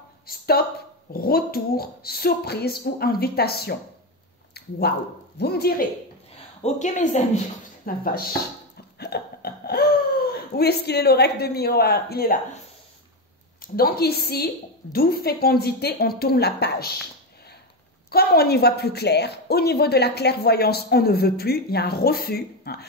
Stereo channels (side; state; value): both; normal; correlation 0.12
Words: stop, retour, surprise ou invitation. Waouh! Vous me direz. Ok mes amis, la vache. Où est-ce qu'il est l'oracle de miroir? Il est là. Donc ici, d'où fécondité, on tourne la page. Comme on y voit plus clair, au niveau de la clairvoyance, on ne veut plus, il y a un refus.